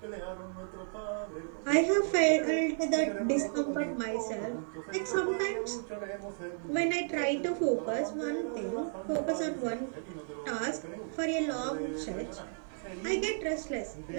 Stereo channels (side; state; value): left; silent; digital silence